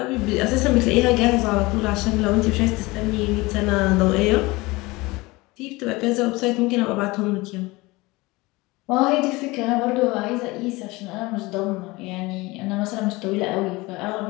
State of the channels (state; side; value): quieter; right; 22.3 dB